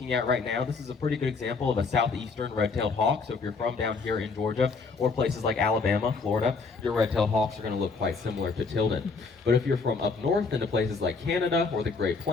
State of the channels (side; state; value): right; quieter; 4.5 dB